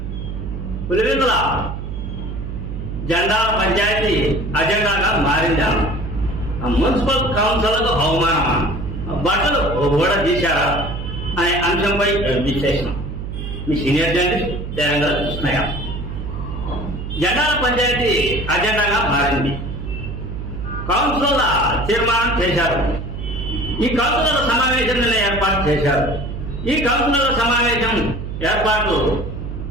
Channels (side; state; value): right; noise; hum, 6 dB below the sound